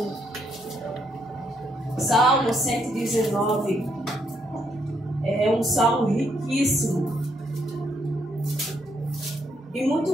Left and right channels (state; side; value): normal; both; correlation 0.74